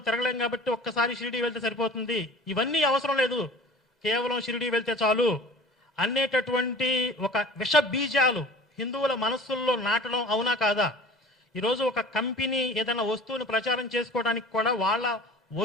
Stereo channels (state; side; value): normal; both; correlation 0.43